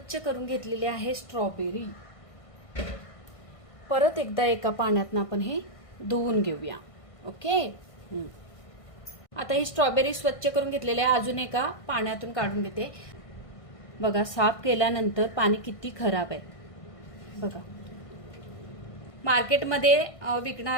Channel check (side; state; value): right; late; 1.5 ms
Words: करून घेतलेले आहे स्ट्रॉबेरी। परत एकदा एका पाण्यातनं आपण हे धुवून घेऊया। ओके। आता ही स्ट्रॉबेरी स्वच्छ करून घेतलेली आहे, अजून एका पाण्यातून काढून घेते। बघा, साफ केल्यानंतर पाणी किती खराब आहे बघा। मार्केटमध्ये